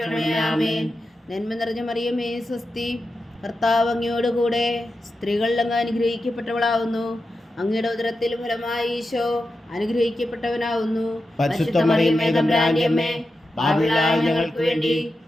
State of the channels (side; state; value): both; normal; correlation 0.90